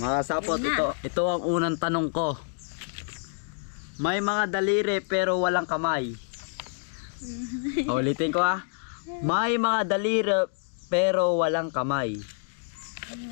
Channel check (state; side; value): silent; right; digital silence